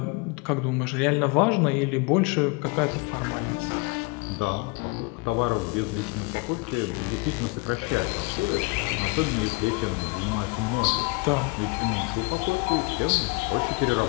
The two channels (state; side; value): quieter; right; 27.9 dB